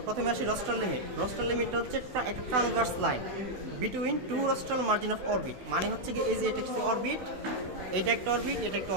প্রথমে আসি রস্ট্রাল লিমিট। রস্ট্রাল লিমিটটা হচ্ছে একটা transverse line between two rostral margin of orbit. মানে হচ্ছে কি এই যে এটা হচ্ছে অরবিট, এটা একটা অরবিট, এটা একটা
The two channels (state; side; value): late; left; 16 ms